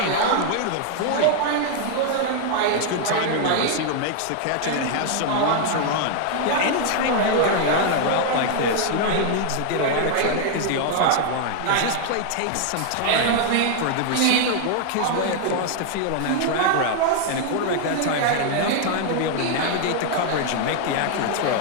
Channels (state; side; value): different; both; correlation 0.00